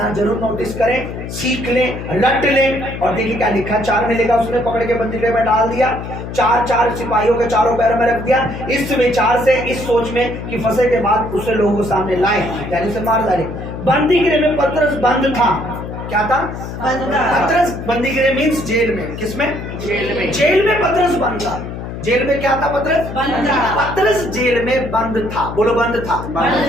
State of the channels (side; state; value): left; noise; hum, 8 dB below the sound